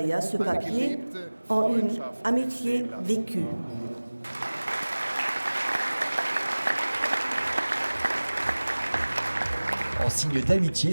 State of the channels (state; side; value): inverted; both; correlation -1.00